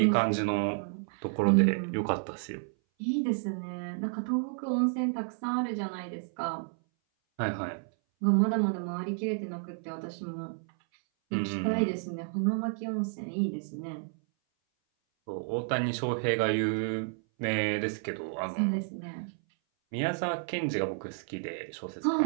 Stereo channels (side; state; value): left; silent; 57 dB below the other